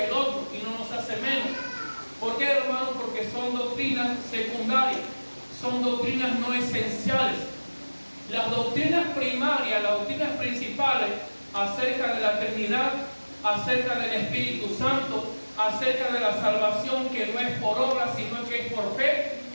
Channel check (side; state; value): both; inverted; correlation -1.00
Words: el otro y no nos hace menos. ¿Por qué, hermano? Porque son doctrinas secundarias, son doctrinas no esenciales. Las doctrinas primarias, las doctrinas principales acerca de la Trinidad, acerca del Espíritu Santo, acerca de la salvación que no es por obra sino que es por fe,